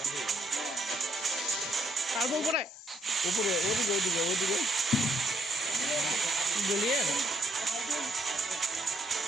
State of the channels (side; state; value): both; normal; correlation 0.72